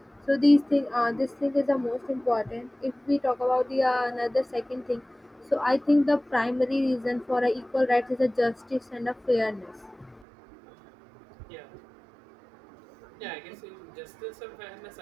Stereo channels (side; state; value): left; drops out; at 10.2 s